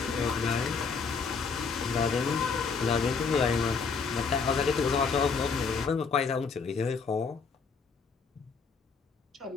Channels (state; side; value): quieter; right; 5.3 dB